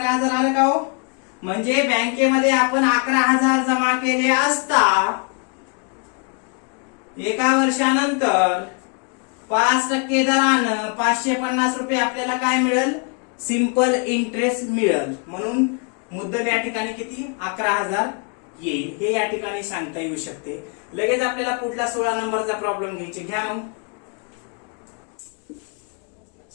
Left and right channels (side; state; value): right; quieter; 38.0 dB